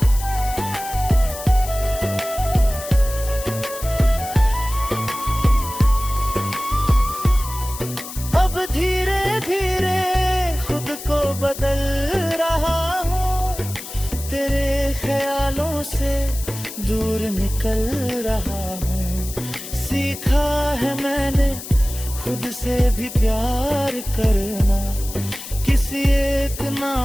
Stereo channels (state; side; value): noise; left; hiss, 11 dB below the sound